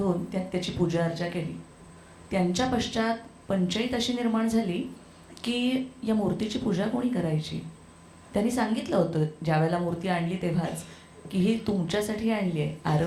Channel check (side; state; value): both; identical; correlation 1.00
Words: त्यात त्याची पूजा अर्चा केली. त्यांच्या पश्चात पंचायत अशी निर्माण झाली की या मूर्तीची पूजा कोणी करायची. त्यांनी सांगितलं होतं ज्यावेळेला मूर्ती आणली तेव्हाच की ही तुमच्यासाठी आणली आहे,